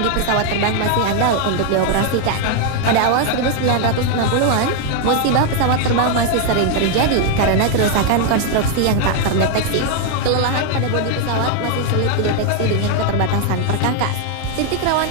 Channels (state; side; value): different; both; correlation 0.00